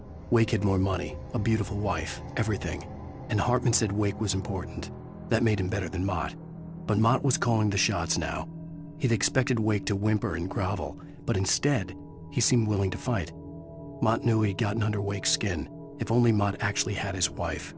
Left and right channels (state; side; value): identical; both; correlation 1.00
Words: Wake had more money, a beautiful wife, everything. And Hartman said Wake was important. That made him better than Mott. But Mott was calling the shots now. He'd expected Wake to whimper and grovel, but instead, he seemed willing to fight. Mott knew he'd gotten under Wake's skin. If only Mott actually had his wife.